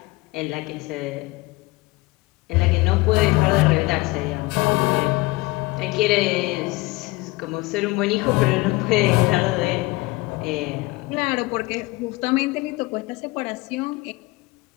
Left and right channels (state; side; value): quieter; right; 22.1 dB